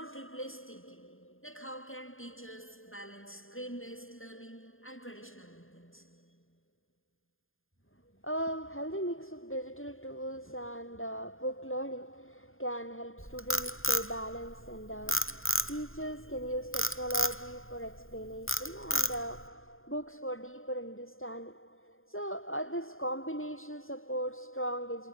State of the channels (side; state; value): right; late; 0.59 ms